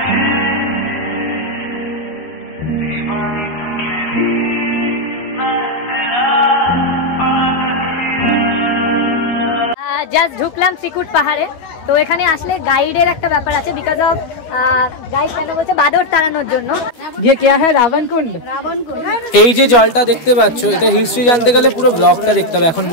Just ঢুকলাম শ্রীকুট পাহাড়ে। তো এখানে আসলে গাইডের একটা ব্যাপার আছে, বিকজ অফ গাইড কেন বলছে বাদর তাড়ানোর জন্য। ये क्या है রাবণ কুণ্ড। এই যে জলটা দেখতে পাচ্ছ, এটা হিস্ট্রি জানতে গেলে পুরো ব্লগটা দেখতে হবে, এখন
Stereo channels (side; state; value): right; late; 12 ms